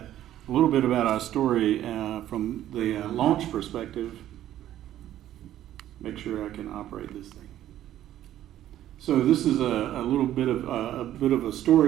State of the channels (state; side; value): quieter; left; 12.5 dB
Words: a little bit about our story from the launch perspective. Make sure I can operate this thing. So this is a little bit of a